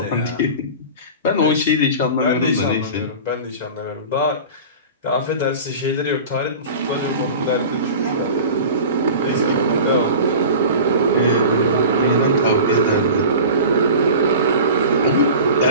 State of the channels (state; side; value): inverted; both; correlation -0.36